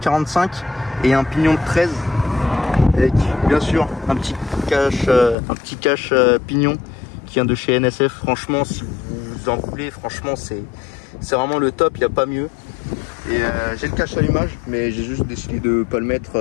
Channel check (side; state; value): right; drops out; at 5.4 s